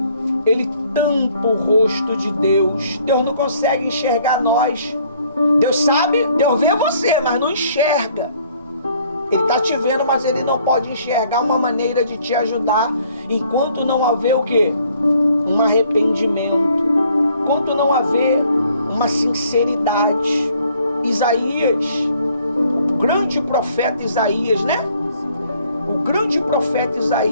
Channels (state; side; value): inverted; both; correlation -0.62